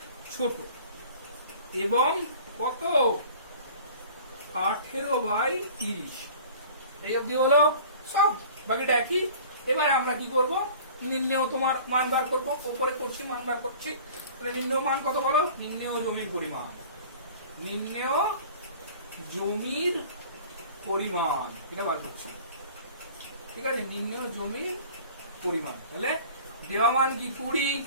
ছোট এবং কত? 18/30। এই অবধি হলো সব, বাকিটা একই। এবার আমরা কি করব? নির্ণেয় তোমার মান বার করবো, উপরে করছি মান বার করছি। তাহলে নির্ণেয় মান কত বলো? নির্ণেয় জমির পরিমাণ, নির্ণেয় জমির পরিমাণ এটা বার করছি, ঠিক আছে? নির্ণেয় জমির পরিমাণ। তাহলে দেওয়া মান কি 20,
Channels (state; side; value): inverted; both; correlation -0.45